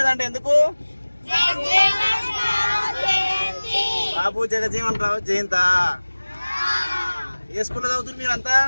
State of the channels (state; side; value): inverted; both; correlation -1.00